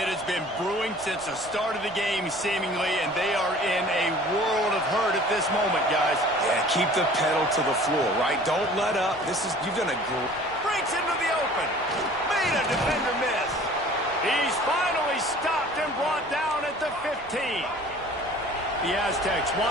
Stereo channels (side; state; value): right; noise; rumble, 22 dB below the sound